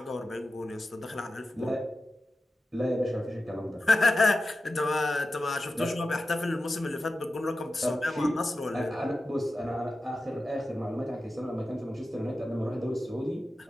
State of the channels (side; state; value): both; normal; correlation 0.93